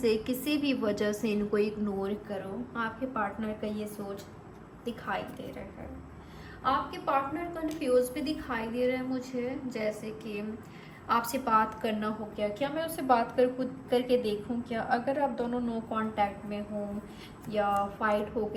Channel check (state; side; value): identical; both; correlation 1.00